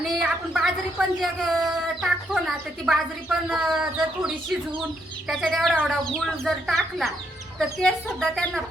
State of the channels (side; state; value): both; normal; correlation 0.75